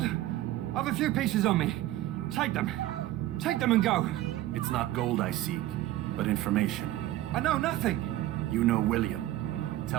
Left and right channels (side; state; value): left; quieter; 14.8 dB